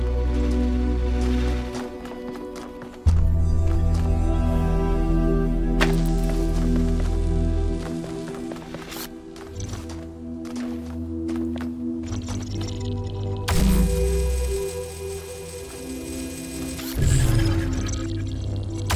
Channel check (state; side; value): identical; both; correlation 1.00